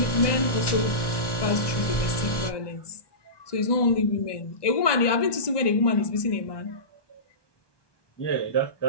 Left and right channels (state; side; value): late; right; 1.2 ms